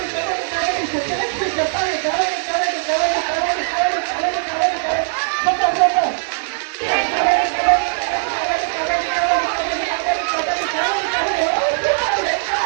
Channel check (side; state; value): left; silent; digital silence